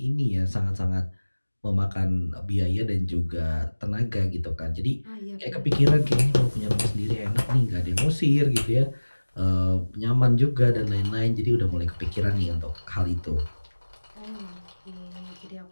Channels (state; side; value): inverted; both; correlation -1.00